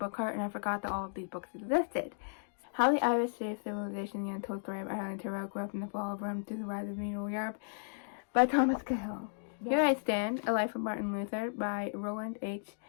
cart, and I forgot that all of these books existed. How the Irish Saved Civilization, the Untold Story of Ireland Tyrrell grew up in the fall of Rome through the rise of medieval Europe by Thomas Cahill. Here I Stand, A Life of Martin Luther by Roland H.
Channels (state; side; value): silent; right; digital silence